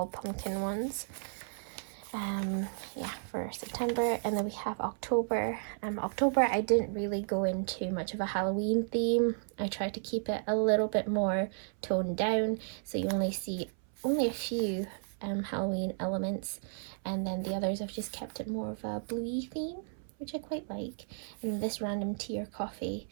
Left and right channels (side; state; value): left; silent; 55 dB below the other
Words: pumpkin ones. Yeah, for September. And then we have October. October, I didn't really go into much of a Halloween theme. I tried to keep it a little bit more toned down, so you only see a few Halloween elements, and then the others I've just kept it more of a bluey theme, which I quite like. And this random tea or coffee